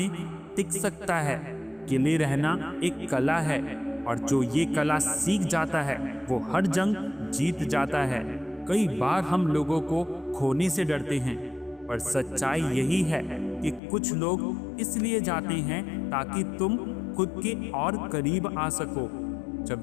टिक सकता है। अकेले रहना एक कला है, और जो ये कला सीख जाता है वो हर जंग जीत जाता है। कई बार हम लोगों को खोने से डरते हैं, पर सच्चाई यही है कि कुछ लोग इसलिए जाते हैं ताकि तुम खुद के और करीब आ सको।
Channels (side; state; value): right; drops out; at 13.8 s